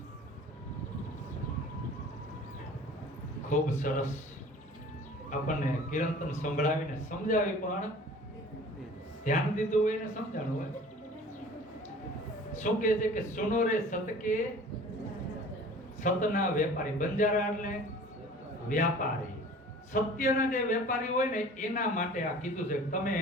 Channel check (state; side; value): normal; both; correlation 0.46